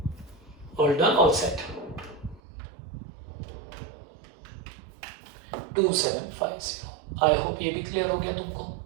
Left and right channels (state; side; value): drops out; left; at 2.4 s